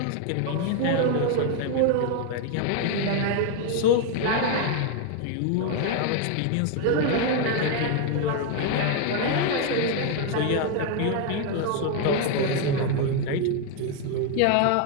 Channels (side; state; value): both; different; correlation 0.01